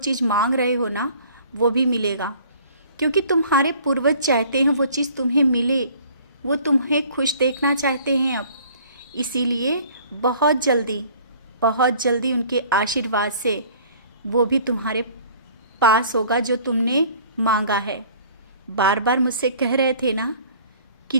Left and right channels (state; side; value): inverted; both; correlation -0.52